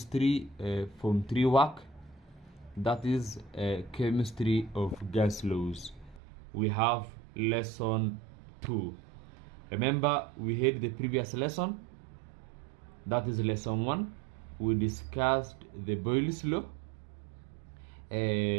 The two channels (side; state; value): left; drops out; at 6.2 s